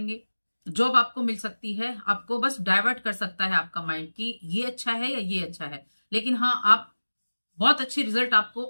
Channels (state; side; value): inverted; both; correlation -1.00